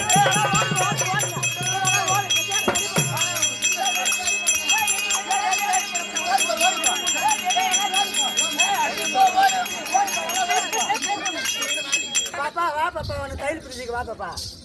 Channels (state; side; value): identical; both; correlation 1.00